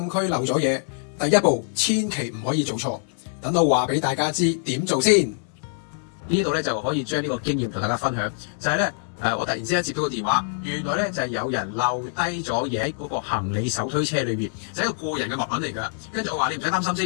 區漏咗嘢，第一步千祈唔可以做錯。等我話俾大家知點做先。呢度咧就可以將呢個經驗同大家分享，就係咧我突然之間接到個電話，原來咧就係有人漏低咗嘢喺嗰個行李手推車裏邊，就係一個個人嘅物品嚟㗎。跟住我話你唔使擔心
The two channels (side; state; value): right; silent; 62 dB below the other